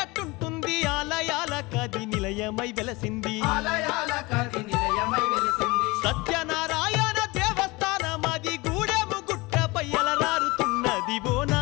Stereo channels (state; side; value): quieter; right; 23.3 dB